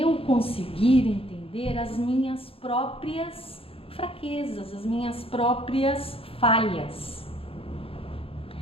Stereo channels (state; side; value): late; right; 0.27 ms